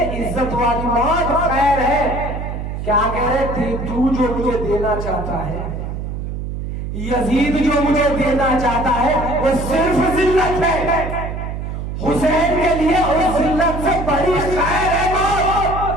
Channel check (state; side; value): noise; right; hum, 5 dB below the sound